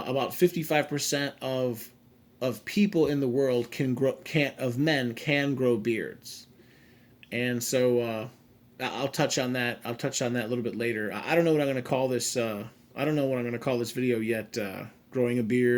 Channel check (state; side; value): identical; both; correlation 1.00